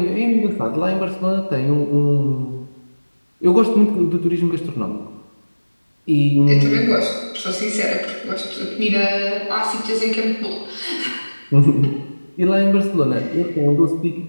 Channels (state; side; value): inverted; both; correlation -1.00